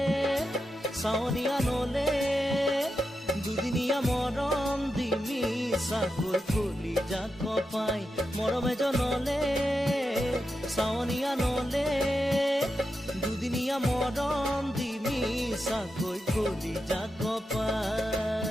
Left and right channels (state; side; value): normal; both; correlation 0.88